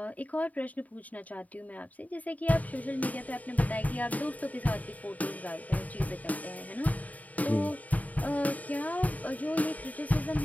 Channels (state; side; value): late; right; 0.073 ms